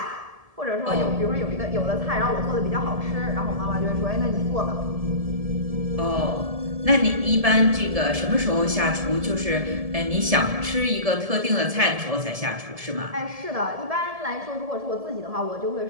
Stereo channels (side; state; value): left; late; 1.7 ms